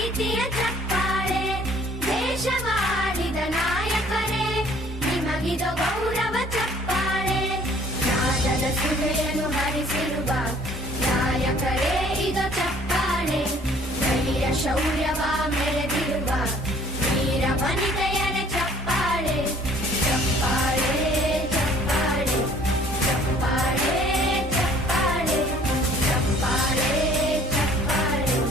ಚಪ್ಪಾಳೆ, ದೇಶವಾಳಿದ ನಾಯಕರೇ ನಿಮಗಿದು ಗೌರವ ಚಪ್ಪಾಳೆ. ನಾದದ ಸುಧೆಯನ್ನು ಹರಿಸಿರುವ ನಾಯಕರೇ ಇದು ಚಪ್ಪಾಳೆ, ಧೈರ್ಯ ಶೌರ್ಯವ ಮೆರೆದಿರುವ ವೀರ ವನಿತೆಯರೇ ಚಪ್ಪಾಳೆ. ಚಪ್ಪಾಳೆ ಚಪ್ಪಾಳೆ ಚಪ್ಪಾಳೆ ಚಪ್ಪಾಳೆ ಚಪ್ಪಾಳೆ ಚಪ್ಪಾಳೆ.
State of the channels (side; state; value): both; normal; correlation 0.56